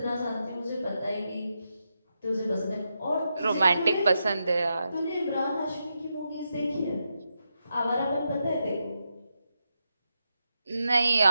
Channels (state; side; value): inverted; both; correlation -0.85